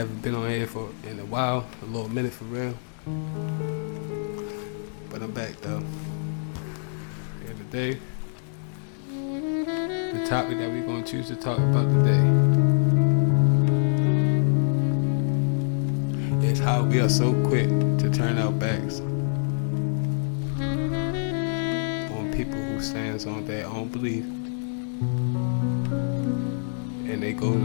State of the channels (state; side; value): silent; right; 61 dB below the other